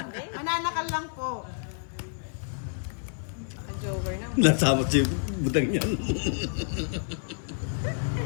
Mananakal lang po. Joker na. Nasama si Butang yan.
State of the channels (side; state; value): right; silent; 55 dB below the other